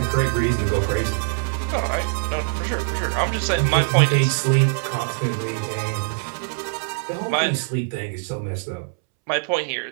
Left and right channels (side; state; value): left; silent; 63 dB below the other